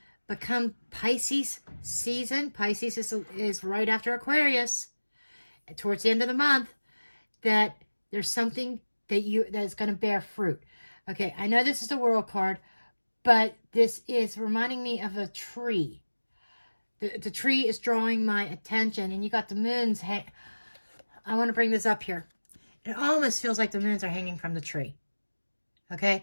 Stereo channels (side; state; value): both; inverted; correlation -1.00